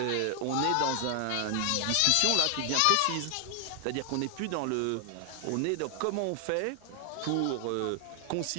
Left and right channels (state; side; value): different; both; correlation 0.00